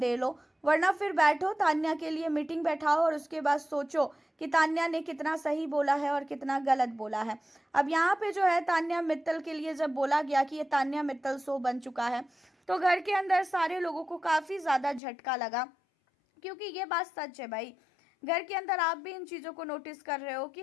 लो, वरना फिर बैठो तान्या के लिए मीटिंग बैठाओ और उसके बाद सोचो कि तान्या ने कितना सही बोला है और कितना गलत बोला है। अब यहाँ पे जो है तान्या मित्तल के लिए जब बोला गया कि ये तान्या मित्तल शो बन चुका है, तो घर के अंदर सारे लोगों को काफ़ी ज़्यादा झटका लगा, क्योंकि ये बात सच है भाई। घर के अंदर आप भी इन चीज़ों को नोटिस कर रहे हो कि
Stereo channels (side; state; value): right; drops out; at 15.0 s